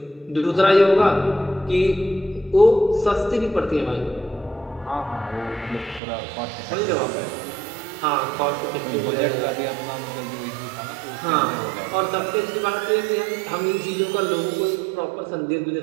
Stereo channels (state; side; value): drops out; left; at 6.0 s